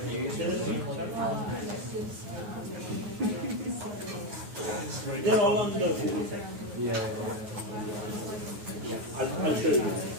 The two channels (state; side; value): late; left; 9.4 ms